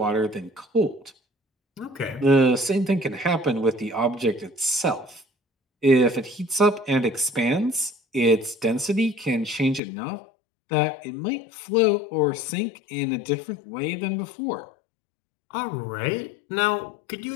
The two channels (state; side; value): drops out; right; at 9.8 s